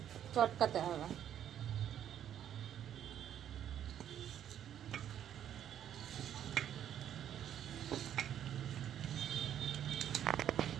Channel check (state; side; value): quieter; left; 10.2 dB